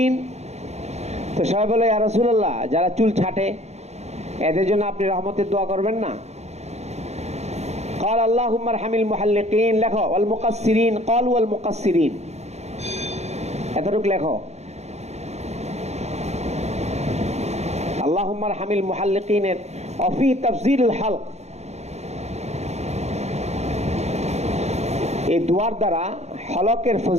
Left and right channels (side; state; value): left; late; 0.32 ms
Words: তো সবাই বলে ইয়া রাসূলুল্লাহ যারা চুল ছাটে এদের জন্য আপনি রহমতের দোয়া করবেন না। قال اللهم ارحم المحلقين, লেখো ওয়াল মুকাসসিরিন, ক্বালু ওয়াল মুকাসসিরিন, এতটুকু লেখো। اللهم ارحم المحلقين وفي تفضيل الحلق, এই দুয়ার দ্বারা হলকের